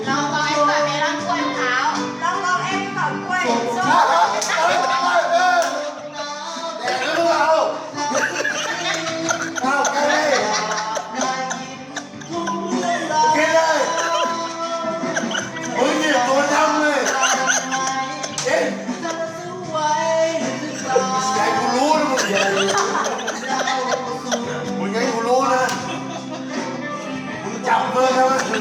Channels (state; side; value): identical; both; correlation 1.00